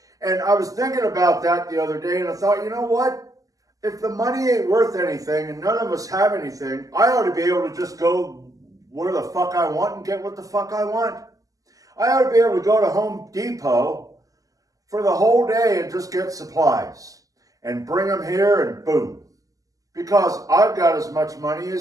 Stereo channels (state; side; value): late; left; 0.17 ms